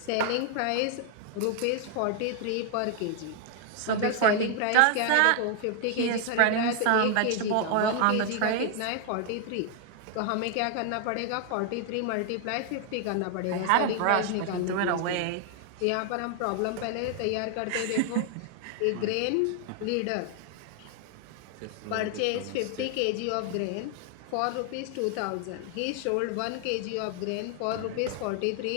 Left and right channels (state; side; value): different; both; correlation 0.00